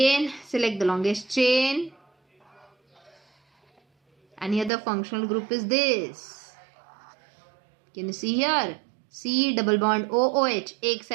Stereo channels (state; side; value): drops out; left; at 4.7 s